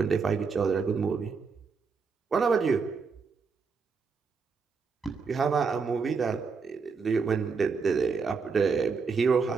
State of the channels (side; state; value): left; quieter; 5.1 dB